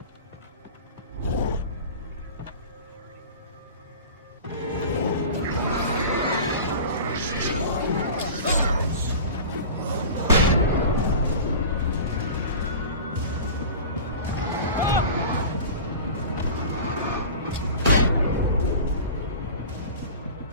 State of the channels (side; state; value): both; inverted; correlation -0.35